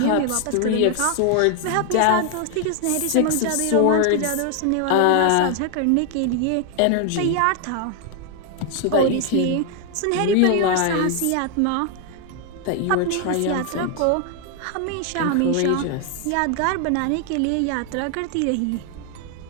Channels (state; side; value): different; both; correlation 0.00